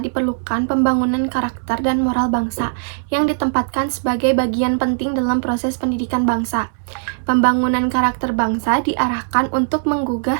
diperlukan pembangunan karakter dan moral bangsa yang ditempatkan sebagai bagian penting dalam proses pendidikan bangsa. Pembangunan karakter bangsa diarahkan untuk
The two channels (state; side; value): silent; left; 66 dB below the other